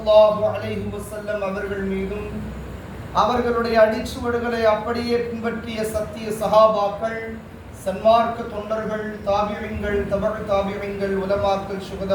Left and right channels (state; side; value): identical; both; correlation 1.00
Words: அலைஹி வஸல்லம் அவர்கள் மீதும் அவர்களுடைய அடிச்சுவடுகளை அப்படியே பின்பற்றிய சத்திய சஹாபாக்கள், சன்மார்க்க தொண்டர்கள், தாபியங்கள், தபழ் தாபியங்கள், உலமாக்கள்,